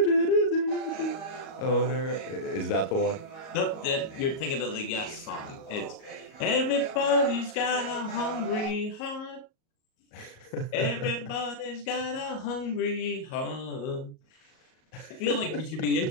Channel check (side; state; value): right; late; 38 ms